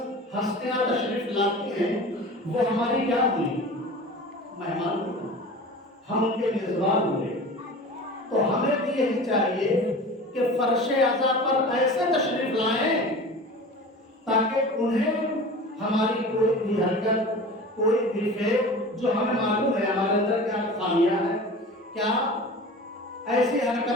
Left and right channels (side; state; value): both; normal; correlation 0.36